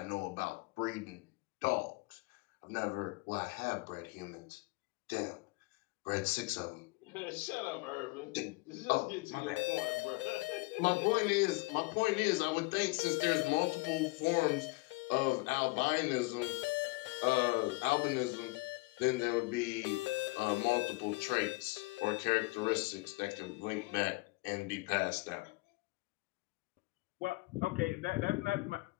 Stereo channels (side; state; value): right; quieter; 25.0 dB